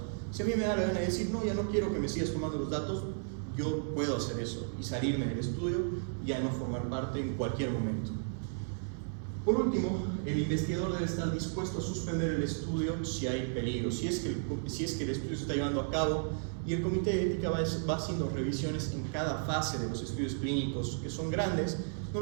si a mí me da la gana de decir, no, ya no quiero que me sigas tomando los datos, yo puedo hacer eso y salirme del estudio y ya no formar parte en cualquier momento. Por último, el investigador debe estar dispuesto a suspender el estudio si hay peligro, si es que el estudio se está llevando a cabo, y el comité de ética va haciendo revisiones en cada fase de los estudios clínicos, que son grandes.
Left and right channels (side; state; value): left; silent; 55 dB below the other